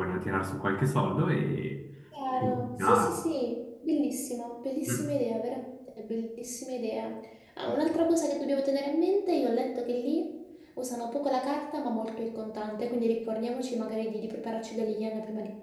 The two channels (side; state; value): both; identical; correlation 1.00